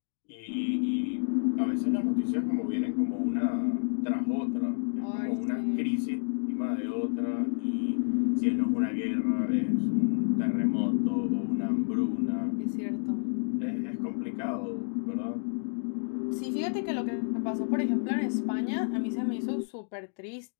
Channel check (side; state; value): right; silent; digital silence